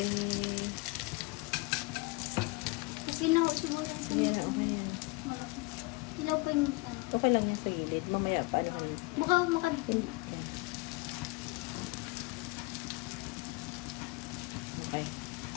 Okay na, siguro sa Ayan, okay. Ilaw pa yung Okay lang yung sa gilid. Mamaya pa lang. makadipin. Okay.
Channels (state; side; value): quieter; right; 24.6 dB